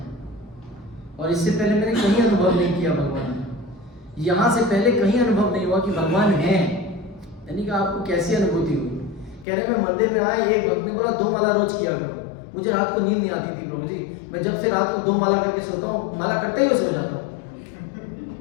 और इससे पहले मैंने कहीं अनुभव नहीं किया भगवान है। यहाँ से पहले कहीं अनुभव नहीं हुआ कि भगवान है। यानी कि आपको कैसी अनुभूति हुई? कह रहे मैं मंदिर में आया, एक भक्त ने बोला 2 माला रोज किया करो। मुझे रात को नींद नहीं आती थी प्रभु जी, मैं जब से रात को 2 माला करके सोता हूँ, माला करते ही सो जाता हूँ।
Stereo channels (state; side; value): drops out; right; at 9.5 s